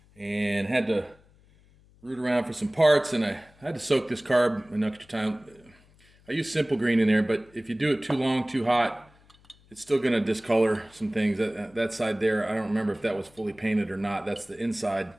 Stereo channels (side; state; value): left; noise; hum, 29 dB below the sound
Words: and had to root around for some parts, and I had to soak this carb an extra time. I use simple green in there, but if you do it too long, too hot, it's still going to discolor some things. That side there, I don't remember if that was fully painted or not. That's the inside